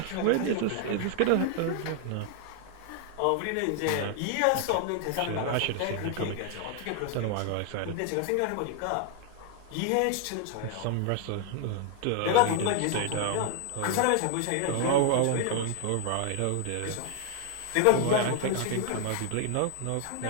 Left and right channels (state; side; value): different; both; correlation 0.00